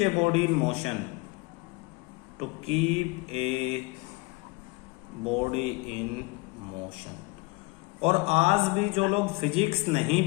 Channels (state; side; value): quieter; right; 25.0 dB